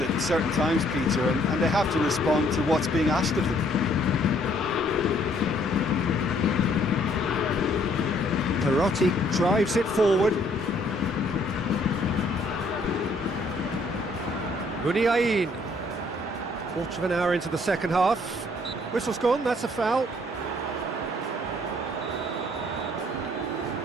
certain times, Peter, and they have to respond to what's being asked of them. Perotti drives it forward. Muniain. Quarter of an hour into the second half. Whistle's gone, that's a foul.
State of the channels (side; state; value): both; normal; correlation 0.64